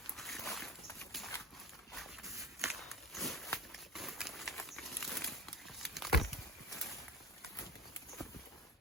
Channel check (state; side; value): normal; both; correlation 0.32